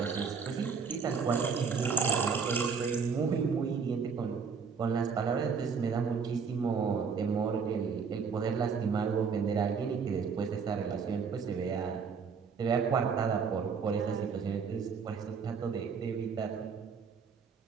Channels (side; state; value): left; quieter; 5.8 dB